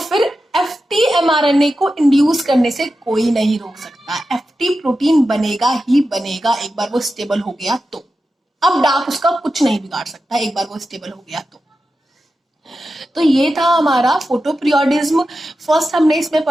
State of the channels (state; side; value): normal; both; correlation 0.91